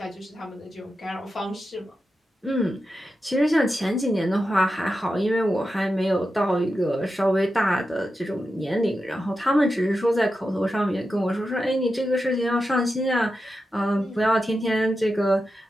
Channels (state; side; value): normal; both; correlation 0.90